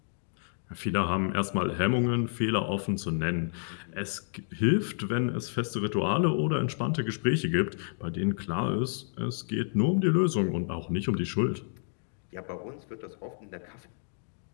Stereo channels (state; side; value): silent; right; digital silence